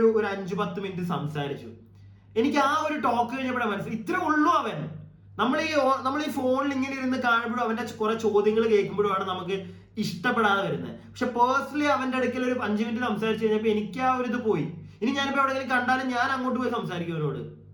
5-10 മിനിറ്റ് സംസാരിച്ചു. എനിക്ക് ആ ഒരു ടോക്ക് കഴിഞ്ഞപ്പോഴാണ് മനസ്സിലായി ഇത്ര ഉള്ളൂ അവൻ. നമ്മൾ ഈ ഫോണിൽ ഇങ്ങനെ ഇരുന്ന് കാണുമ്പോഴും അവന്റെ കുറെ ചോദ്യങ്ങൾ കേൾക്കുമ്പോഴുമാണ് നമുക്ക് ഇഷ്ടപ്പെടാതെ വരുന്നത്. പക്ഷെ പേഴ്സണലി അവന്റെ അടുക്കൽ ഒരു 5 മിനിറ്റ് സംസാരിച്ചു കഴിഞ്ഞപ്പോ എനിക്ക് ആ ഒരു ഇത് പോയി. ഇനി ഞാനിപ്പോ എവിടെയെങ്കിലും കണ്ടാലും ഞാൻ അങ്ങോട്ട് പോയി സംസാരിക്കും അവരോട്.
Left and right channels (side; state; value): both; identical; correlation 1.00